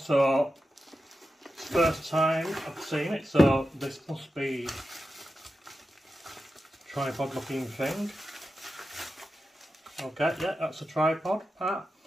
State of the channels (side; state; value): both; normal; correlation 0.91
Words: So first time I've seen it, so this must be a tripod looking thing. Okay, yeah, that's a tripod part.